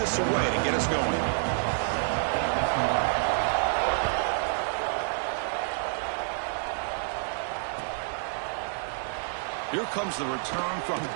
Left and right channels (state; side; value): silent; left; digital silence